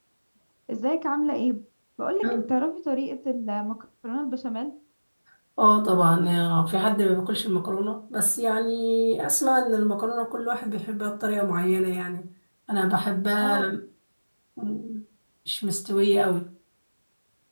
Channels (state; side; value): inverted; both; correlation -1.00